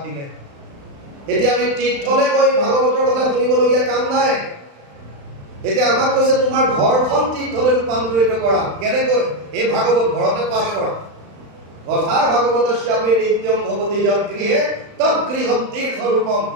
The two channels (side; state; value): left; late; 35 ms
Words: দিলে। এতিয়া আমি তীৰ্থলৈ গৈ ভাগৱতৰ কথা শুনিবলগীয়া কাম নাই। এতিয়া আমাক কৈছে তোমাৰ ঘৰখন তীৰ্থলৈ ৰূপান্তৰিত কৰা। কেনেকৈ? এই ভাগৱত ঘৰতে পাঠ কৰা। কথা ভাগৱতস্যাপি নিত্যম ভৱতি যৎ গৃহে তৎ গৃহম তীৰ্থৰূপম।